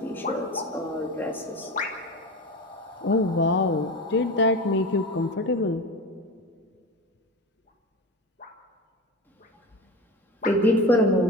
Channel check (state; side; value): normal; both; correlation 0.27